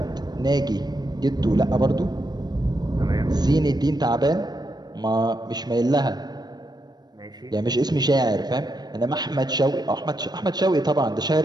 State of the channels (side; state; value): left; late; 0.19 ms